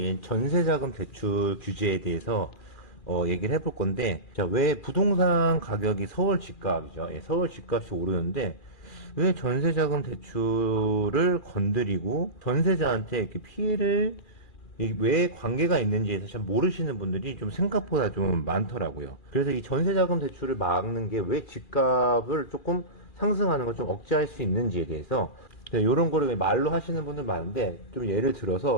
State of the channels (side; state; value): right; late; 2.4 ms